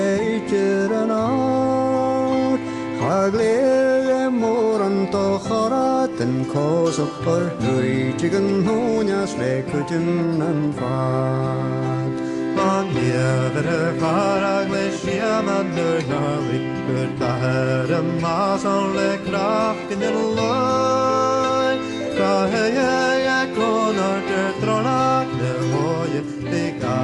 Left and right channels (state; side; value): identical; both; correlation 1.00